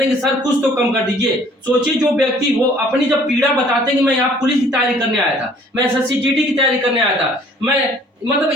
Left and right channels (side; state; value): both; normal; correlation 0.56